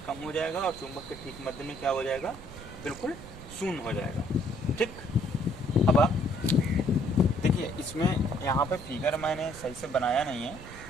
कम हो जाएगा और चुंबक के ठीक मध्य में क्या हो जाएगा, बिल्कुल शून्य हो जाएगा, ठीक। अब आप देखिए इसमें यहाँ पे फिगर मैंने सही से बनाया नहीं है,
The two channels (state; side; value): noise; right; rumble, 15 dB below the sound